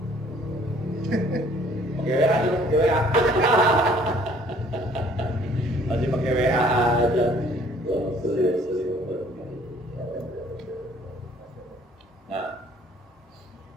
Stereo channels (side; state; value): both; normal; correlation 0.58